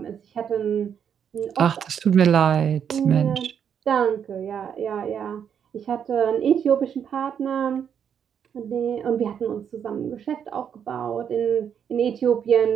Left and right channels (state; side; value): quieter; left; 8.1 dB